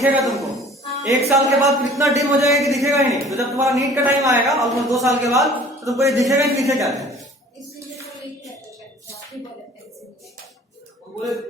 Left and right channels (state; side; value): normal; both; correlation 0.50